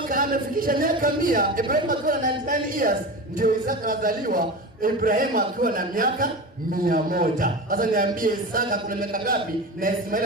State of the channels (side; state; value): both; normal; correlation 0.28